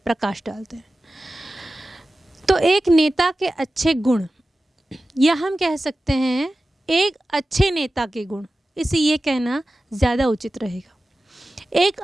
प्रकाश डालते हैं। तो एक नेता के अच्छे गुण या हम कह सकते हैं एक अच्छे नेता के गुण, इसे ये कहना ज़्यादा उचित रहेगा। एक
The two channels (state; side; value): normal; both; correlation 0.95